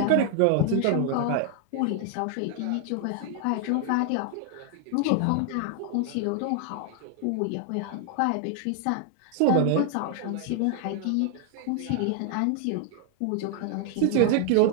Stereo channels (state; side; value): different; both; correlation 0.00